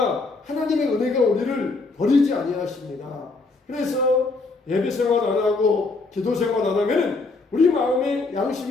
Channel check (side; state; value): right; quieter; 3.7 dB